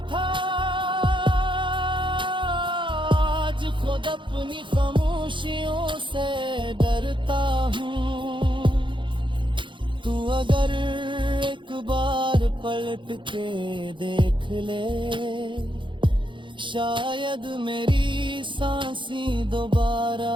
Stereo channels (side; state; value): left; late; 0.24 ms